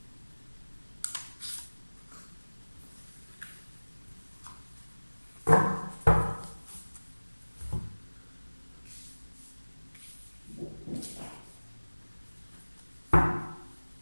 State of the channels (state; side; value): inverted; both; correlation -1.00